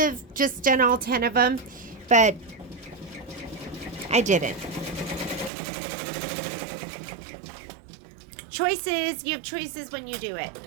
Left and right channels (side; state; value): left; drops out; at 5.5 s